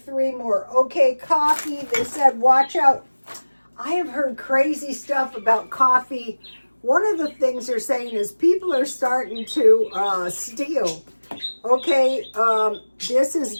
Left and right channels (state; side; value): inverted; both; correlation -1.00